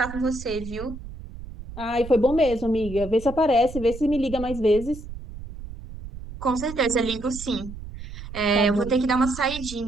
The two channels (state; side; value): noise; right; rumble, 12 dB below the sound